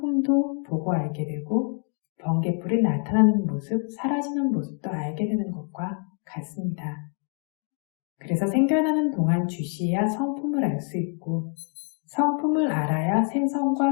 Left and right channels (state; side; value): quieter; right; 39.6 dB